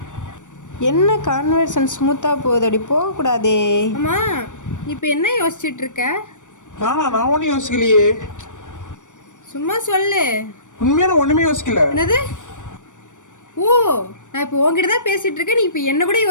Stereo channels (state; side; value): late; right; 0.86 ms